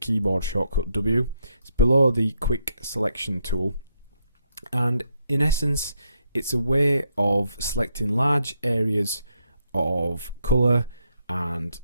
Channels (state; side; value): inverted; both; correlation -0.78